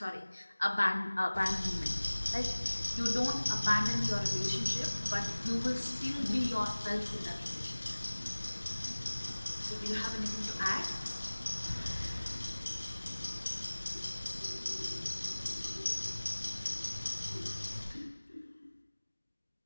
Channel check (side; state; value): both; inverted; correlation -1.00